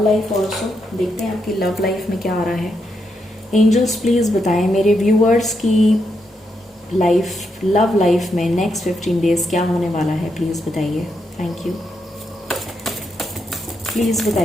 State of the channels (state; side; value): normal; both; correlation 0.81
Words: life also. देखते हैं आपकी लव लाइफ में क्या आ रहा है. एंजल्स प्लीज़ बताएं मेरे व्यूअर्स की लाइफ, लव लाइफ में नेक्स्ट 15 डेज़ क्या होने वाला है, प्लीज़ बताइए. Thank you. प्लीज़